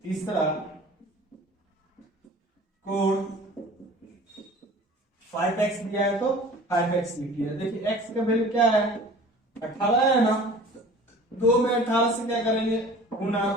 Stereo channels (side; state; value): both; normal; correlation 0.45